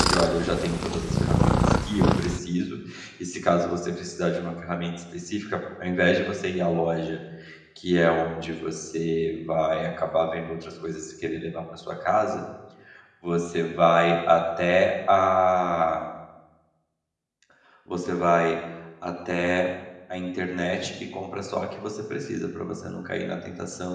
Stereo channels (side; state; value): both; identical; correlation 1.00